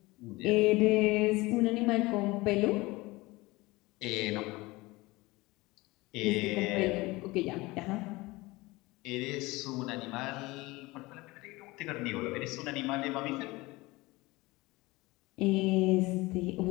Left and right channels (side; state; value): right; quieter; 21.6 dB